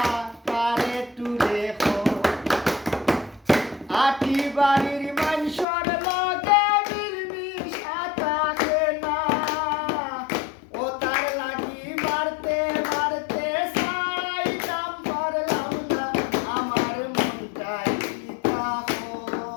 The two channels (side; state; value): right; drops out; at 5.7 s